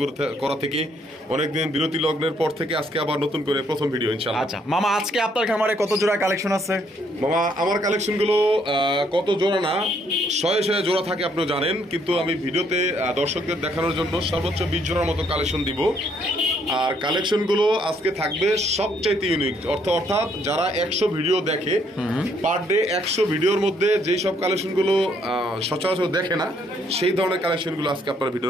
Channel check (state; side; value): normal; both; correlation 0.69